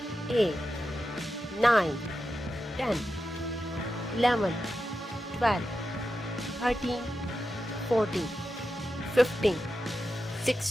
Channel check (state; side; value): normal; both; correlation 0.90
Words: 8, 9, 10, 11, 12, 13, 14, 15,